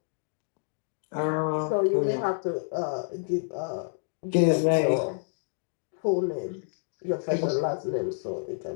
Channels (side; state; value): right; silent; digital silence